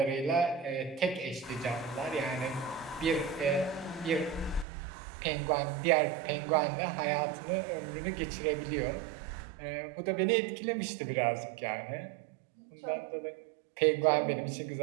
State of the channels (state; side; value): drops out; left; at 4.7 s